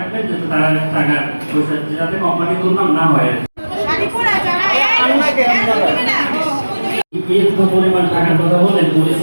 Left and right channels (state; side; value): inverted; both; correlation -1.00